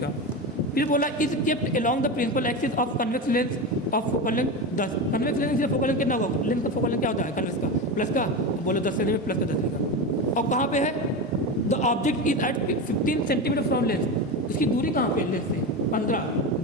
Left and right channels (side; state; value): both; normal; correlation 0.20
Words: फिर बोला is kept along the principal axis of convex lens of focal length 10, convex lens से फोकल लेंथ कितना होगा, लेंस का फोकल लेंथ क्या होता है कन्वेक्स का प्लस का, बोलो 10 सेंटीमीटर प्लस का 10 लिखा, और कहाँ पे है, the object is at 15 centimetre from lens, इसकी दूरी कहाँ पे है लेंस से 15,